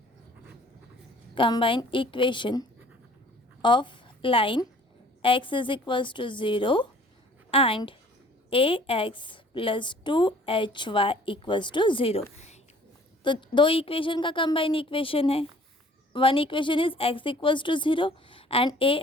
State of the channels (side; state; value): both; normal; correlation 0.53